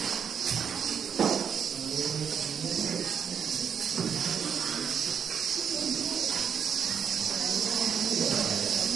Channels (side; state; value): left; quieter; 7.5 dB